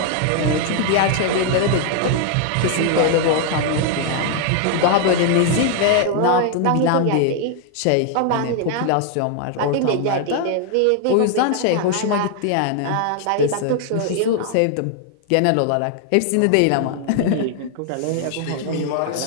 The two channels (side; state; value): both; different; correlation 0.00